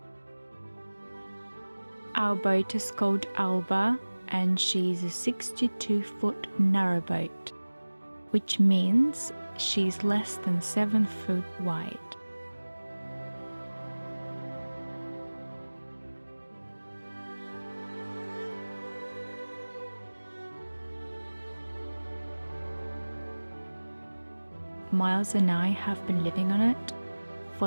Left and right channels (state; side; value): inverted; both; correlation -1.00